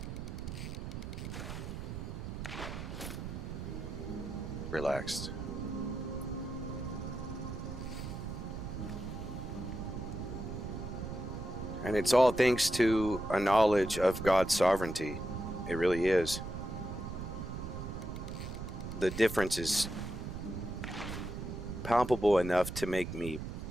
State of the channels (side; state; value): right; noise; rumble, 7 dB below the sound